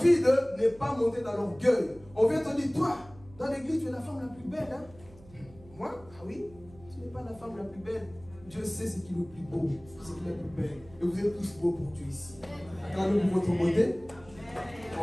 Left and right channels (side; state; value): right; noise; hum, 23 dB below the sound